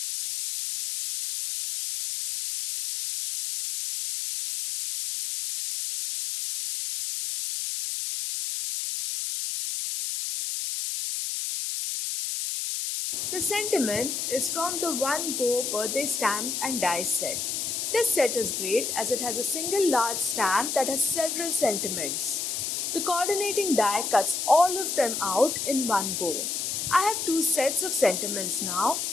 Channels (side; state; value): left; noise; hiss, 2 dB below the sound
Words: The sentiment is from the One Go Birthday Stamp and Die set. This set is great as it has a single large stamp that has several sentiments. The coordinating die cuts all of them out in one go. I have two sets of sentiments now,